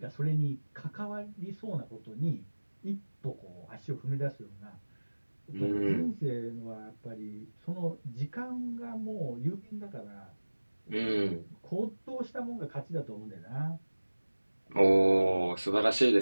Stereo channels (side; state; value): both; inverted; correlation -1.00